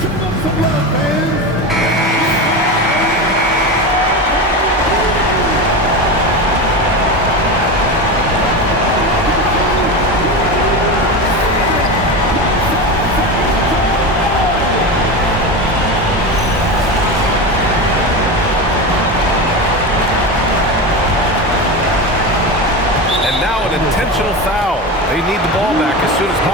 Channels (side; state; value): both; normal; correlation 0.22